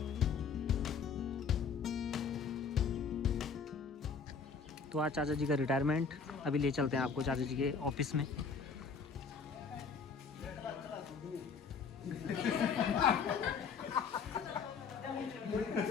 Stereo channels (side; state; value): right; quieter; 5.5 dB